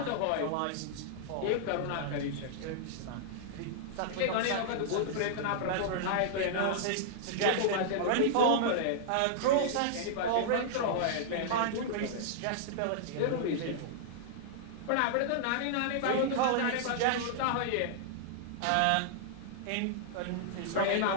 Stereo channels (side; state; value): both; different; correlation -0.01